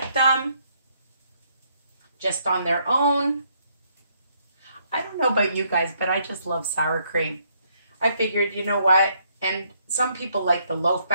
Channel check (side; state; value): both; inverted; correlation -0.71